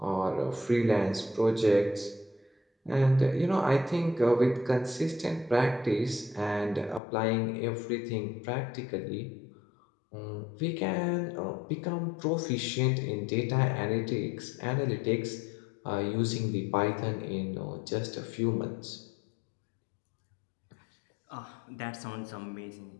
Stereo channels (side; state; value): right; drops out; at 7.0 s